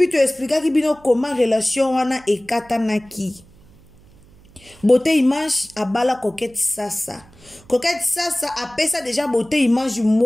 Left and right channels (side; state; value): right; noise; hum, 26 dB below the sound